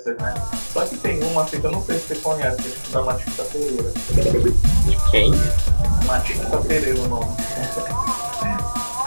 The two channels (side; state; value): both; inverted; correlation -1.00